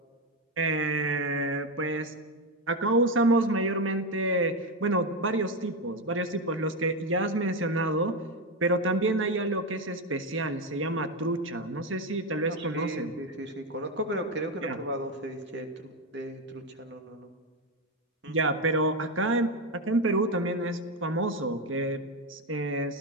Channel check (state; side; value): normal; both; correlation 0.11